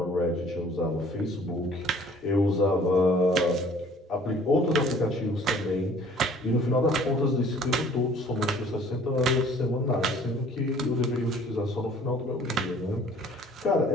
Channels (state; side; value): normal; both; correlation 0.54